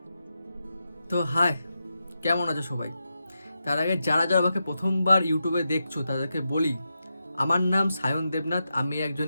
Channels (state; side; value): inverted; both; correlation -0.88